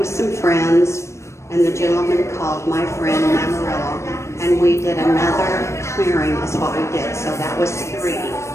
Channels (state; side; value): late; right; 0.13 ms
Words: some friends, and the gentleman called my friend in Amarillo, and we did another clearing is what we did. So that was 3.